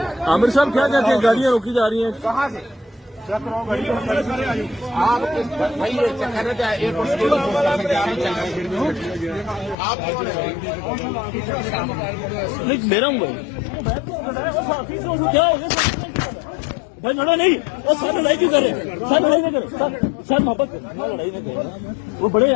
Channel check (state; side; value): drops out; right; at 9.8 s